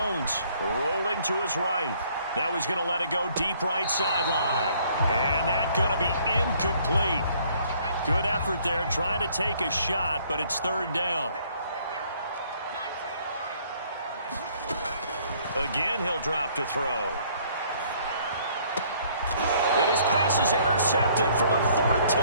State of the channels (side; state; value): both; inverted; correlation -0.62